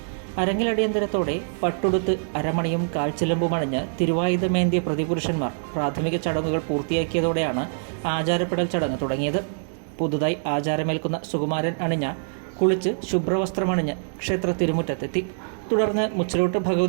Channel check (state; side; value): silent; left; digital silence